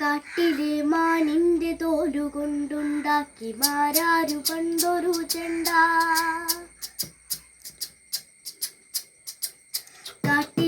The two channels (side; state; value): both; identical; correlation 1.00